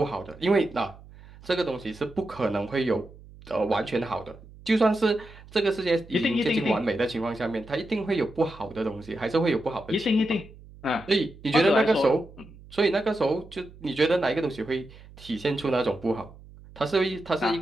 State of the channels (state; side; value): noise; right; hum, 20 dB below the sound